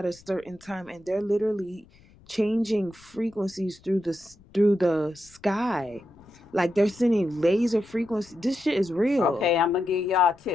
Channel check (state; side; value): noise; left; rumble, 27 dB below the sound